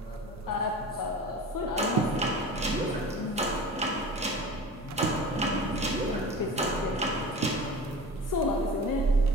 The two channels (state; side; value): normal; both; correlation 0.36